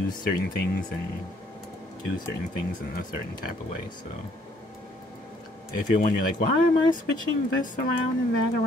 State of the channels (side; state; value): both; normal; correlation 0.64